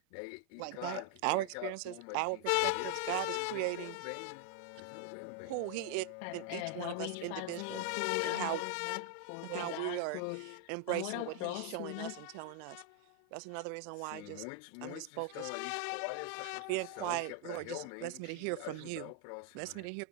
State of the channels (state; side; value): different; both; correlation 0.00